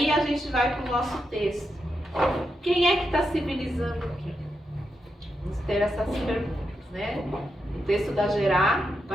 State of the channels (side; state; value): both; normal; correlation 0.85